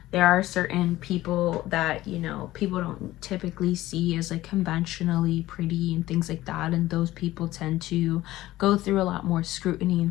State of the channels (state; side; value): quieter; right; 16.1 dB